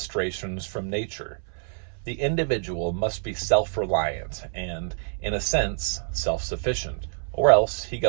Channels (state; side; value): silent; left; 60 dB below the other